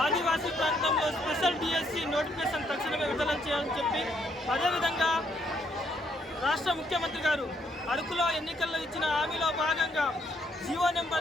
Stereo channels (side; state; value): both; normal; correlation 0.72